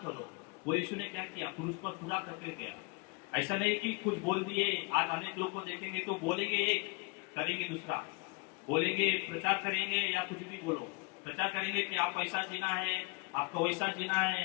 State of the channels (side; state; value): right; quieter; 31.0 dB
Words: करो। वो यीशु ने क्या किया, क्रूस पर पूरा करके गया। ऐसा नहीं कि कुछ बोल दिए। आज अनेक लोग को देखेंगे तो बोलेंगे एक, करेंगे दूसरा, बोलेंगे प्रचार करेंगे या कुछ भी बोलो, प्रचार करेंगे कि आप ऐसा जीना है, आपको वैसा जीना है,